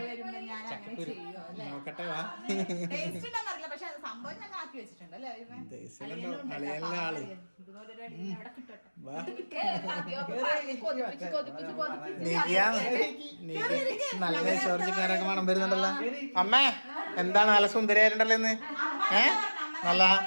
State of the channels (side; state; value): both; inverted; correlation -1.00